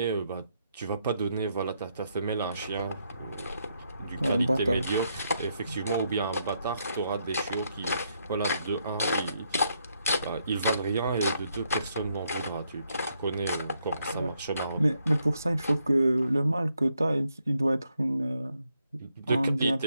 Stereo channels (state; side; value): inverted; both; correlation -0.77